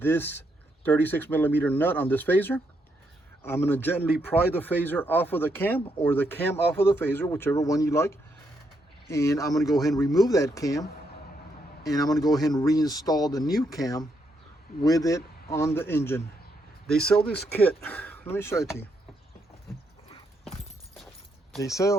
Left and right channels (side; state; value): both; normal; correlation 0.78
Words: 36 millimeter nut on this phaser. I'm going to gently pry the phaser off of the cam, or the cam off of the phaser, whichever one you like. And I'm going to go ahead and remove that cam. And I'm going to go ahead and reinstall the new cam with it on the engine. They sell this kit. Let me show it to you. They